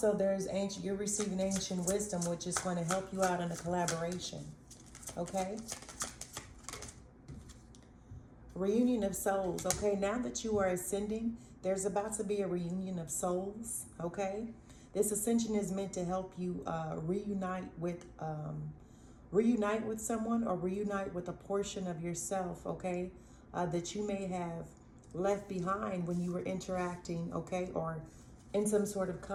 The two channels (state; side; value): identical; both; correlation 1.00